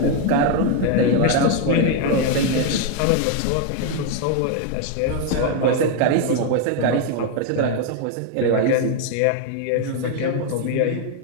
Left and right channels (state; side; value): different; both; correlation 0.01